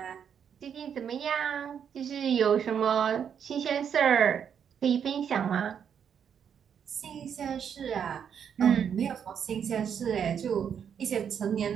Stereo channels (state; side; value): quieter; left; 7.9 dB